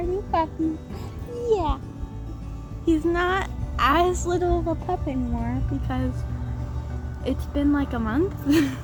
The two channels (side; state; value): both; identical; correlation 1.00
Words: new puppy. Yeah. He's not as little of a pup anymore because it's been like a month.